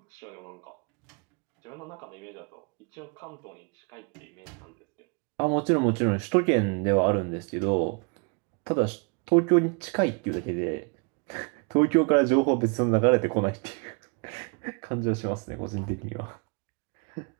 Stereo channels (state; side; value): quieter; left; 34.3 dB